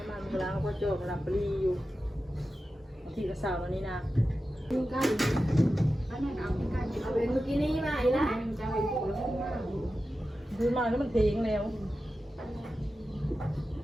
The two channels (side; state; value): both; normal; correlation 0.93